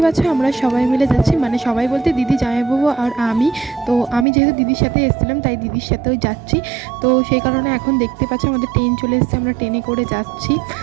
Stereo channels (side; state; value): left; drops out; at 4.2 s